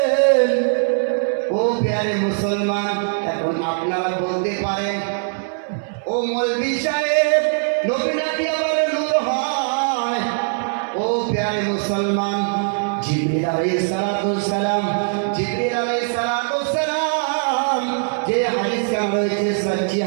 ও প্যারে মুসলমান, এখন আপনারা বলতে পারেন, ও মৌলভী সাহেব, নবী নাকি আবার নূর হয়? ও প্যারে মুসলমান, জিবরিল আলাইহিস সালাম যে হাদিস রয়েছে সহিহ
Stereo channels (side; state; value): left; silent; 61 dB below the other